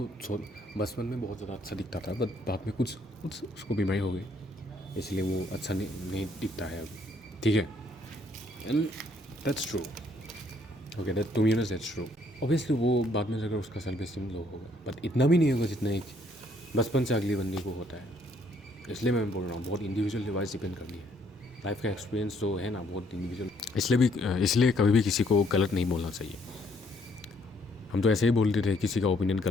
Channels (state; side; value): normal; both; correlation 0.67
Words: बचपन में बहुत ज़्यादा अच्छा दिखता था बट बाद में कुछ कुछ उसको बीमारी हो गई, इसलिए वो अच्छा नहीं दिखता है अब। ठीक है, and that's true, okay, that to be honest that's true. Obviously वो बाद में जाकर उसका सेल्फ एस्टीम लो होगा, बट इतना भी नहीं होगा जितना एक बचपन से अगले बंदे को होता है। इसलिए मैं बोल रहा हूँ बहुत इंडिविजुअल डिवाइस डिपेंड करनी है, लाइफ का एक्सपीरियंस जो है ना बहुत इंडिविजुअल, इसलिए कभी भी किसी को गलत नहीं बोलना चाहिए। हम तो ऐसे ही बोलते थे किसी का ओपिनियन